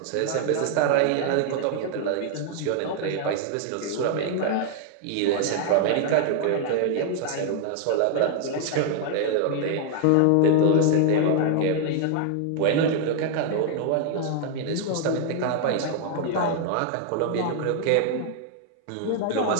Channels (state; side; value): different; both; correlation 0.00